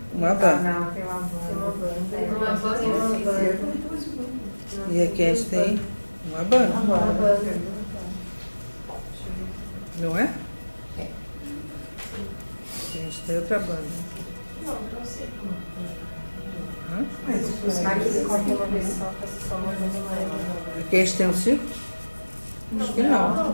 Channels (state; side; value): inverted; both; correlation -1.00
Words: uma banda. Não, tem uma banda. Uma banda E aqui a gente tem uma banda, Uma banda. não é? É. A gente tem outra banda. Não sei como. Hã? Mas Aqui ele corta uma vez só, faço só uma vez mais. Aqui a gente tem um círculo? Acho que não.